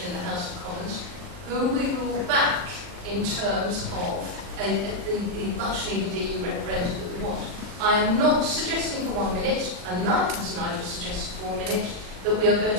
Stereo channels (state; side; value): late; left; 39 ms